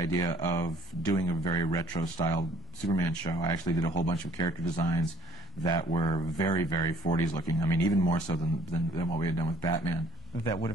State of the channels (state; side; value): normal; both; correlation 0.58